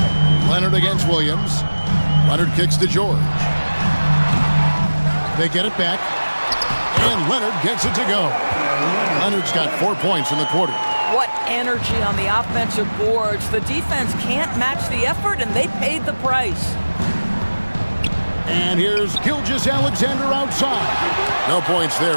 Leonard against Williams. Leonard kicks to George. They get it back. And Leonard gets it to go. Leonard's got 4 points in the quarter. What energy on the offensive boards. The defense can't match the effort, and they paid the price. And here's Gilgeous-Alexander outside. No points there,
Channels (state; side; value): inverted; both; correlation -1.00